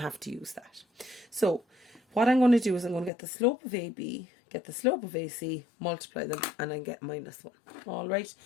have to use that. So, what I'm going to do is I'm going to get the slope of AB, get the slope of AC, multiply them, and I get minus 1. Alright,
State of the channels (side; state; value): right; drops out; at 3.1 s